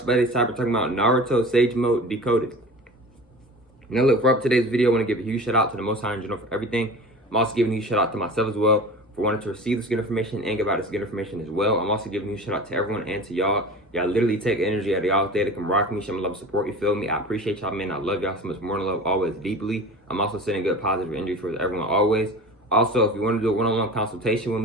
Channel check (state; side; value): normal; both; correlation 0.36